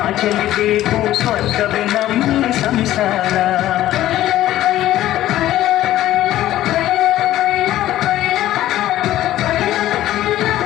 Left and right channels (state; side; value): quieter; right; 13.9 dB